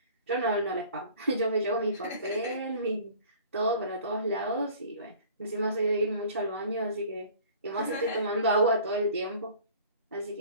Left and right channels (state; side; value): inverted; both; correlation -0.47